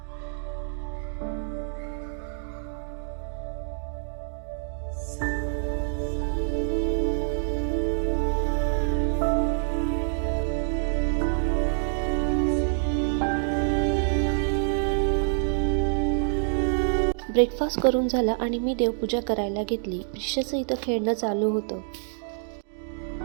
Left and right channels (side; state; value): left; silent; digital silence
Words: ब्रेकफास्ट करून झाला आणि मी देवपूजा करायला घेतली. प्रिशाचं इथं खेळणं चालू होतं.